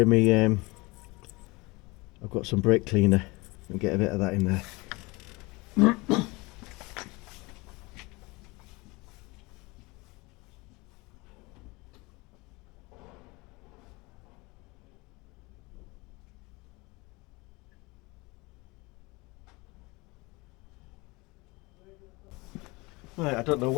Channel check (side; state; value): right; quieter; 24.4 dB